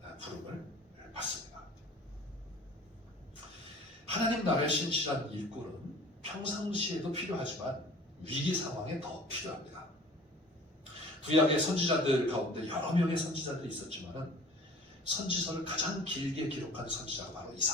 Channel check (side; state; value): both; normal; correlation 0.47